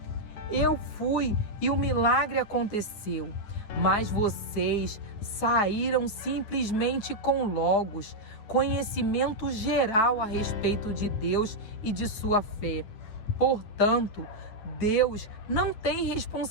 Eu fui e o milagre aconteceu. Mas vocês saíram simplesmente com Logos, conhecimento geral a respeito de Deus e de sua fé. Portanto, Deus não tem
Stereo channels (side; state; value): right; late; 9.6 ms